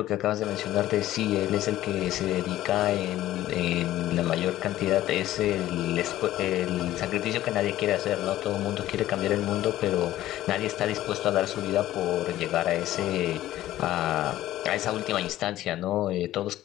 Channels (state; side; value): quieter; right; 14.4 dB